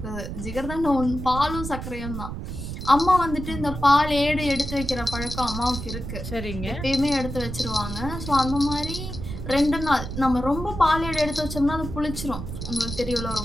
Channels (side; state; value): right; noise; rumble, 7 dB below the sound